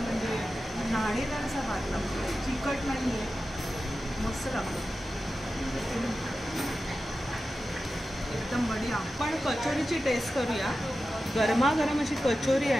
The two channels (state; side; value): normal; both; correlation 0.93